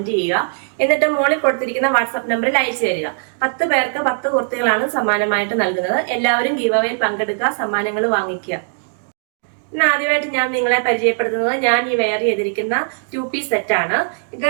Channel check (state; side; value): silent; left; digital silence